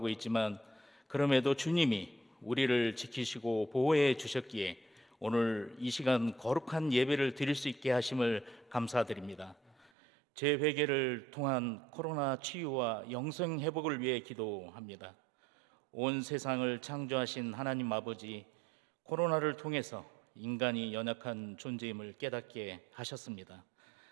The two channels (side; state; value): left; drops out; at 9.9 s